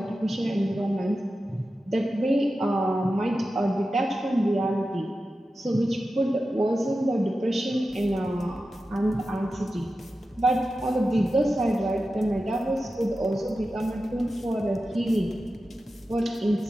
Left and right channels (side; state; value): both; normal; correlation 0.92